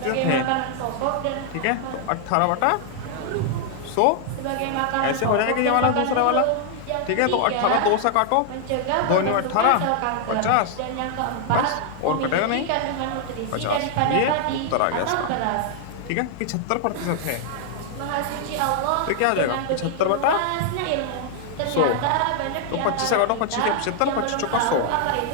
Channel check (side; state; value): both; different; correlation 0.00